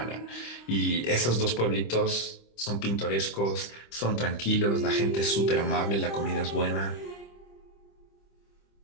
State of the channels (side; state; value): right; late; 25 ms